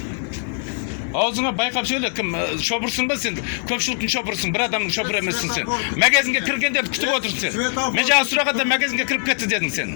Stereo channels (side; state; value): right; silent; 57 dB below the other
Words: Аузыңа байқап сөйле, кім шопырсың ба сен? Көпшіліктің шопырсың, бір адамның шопыр емессің сен. Магазинге кіргендерді күтіп отырсың сен. Мен жаңа сұрағанда магазинге кіріп кетті дедің сен.